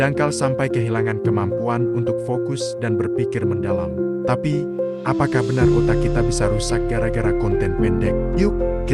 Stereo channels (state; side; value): identical; both; correlation 1.00